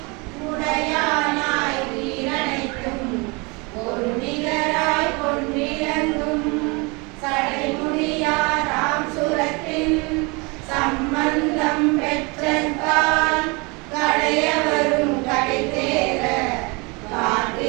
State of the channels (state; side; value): quieter; left; 28.5 dB